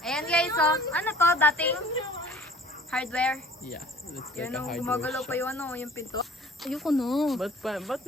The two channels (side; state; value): both; normal; correlation 0.50